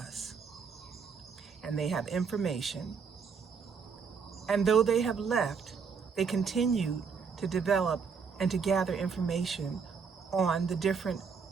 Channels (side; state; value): left; quieter; 5.8 dB